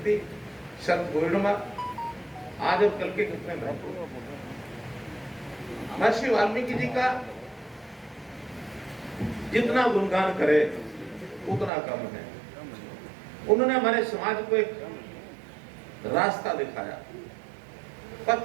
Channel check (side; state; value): left; drops out; at 11.7 s